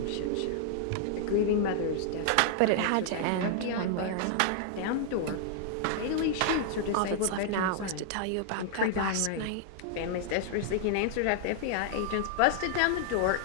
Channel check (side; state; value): both; different; correlation 0.00